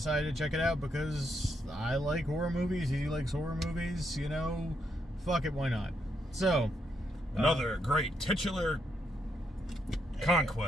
to check it out because I like horror movies, he likes horror movies, you know, fuck it, why not? So, another great titular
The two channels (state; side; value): normal; both; correlation 0.78